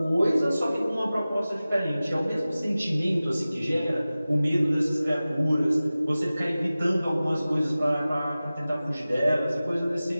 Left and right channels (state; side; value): inverted; both; correlation -0.97